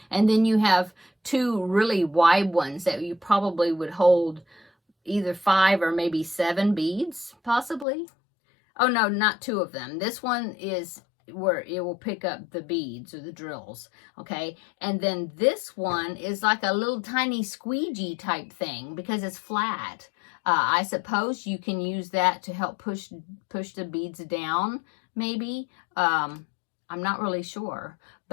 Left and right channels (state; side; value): drops out; right; at 7.9 s